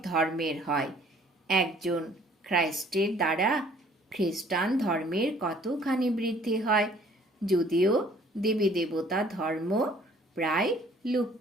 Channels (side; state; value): both; normal; correlation 0.57